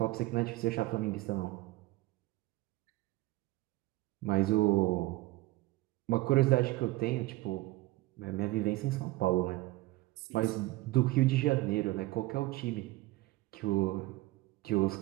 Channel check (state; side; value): quieter; left; 19.5 dB